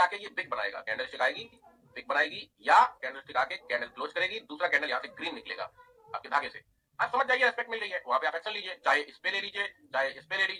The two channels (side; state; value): both; identical; correlation 1.00